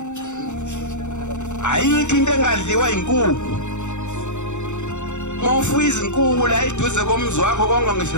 Ayikho into engadliwa inkukhu. Mawufuya izinkukhu la eduze komzi wakho konke ngisho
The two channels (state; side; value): late; right; 0.84 ms